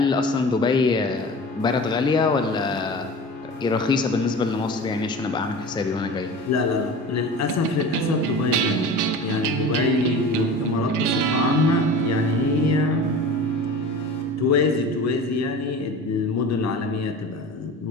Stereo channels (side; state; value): both; normal; correlation 0.35